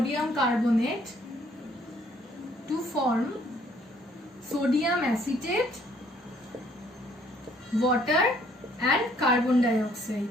carbonate to form sodium acetate, water and carbon dioxide.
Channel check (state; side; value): normal; both; correlation 0.63